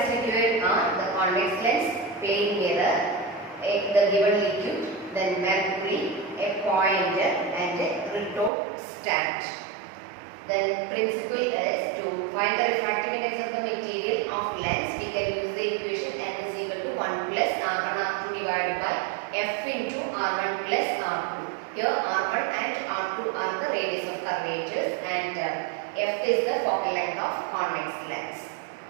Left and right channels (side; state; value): left; drops out; at 8.5 s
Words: required are the convex lens, plane mirror, the given liquid, then mercury, a pointer and a retort stand. Then principle is to find the refractive index of the material of lens. We can use the equation n is equal to 1 plus r1 r2 divided by f into r1 plus r2. Here r1 and r2 are the radius of curvatures and f is the focal length of convex lens.